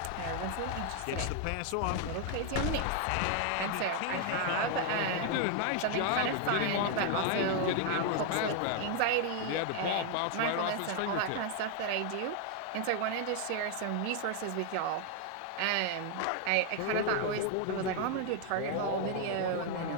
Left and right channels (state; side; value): different; both; correlation 0.00